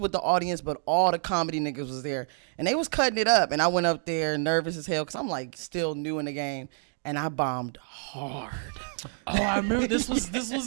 the audience, but all the comedy niggas was there, and they was cutting it up. And I went up there nervous as hell because I'm like still new in the game, and I bombed hard. Oh, I remember this was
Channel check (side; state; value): left; silent; 59 dB below the other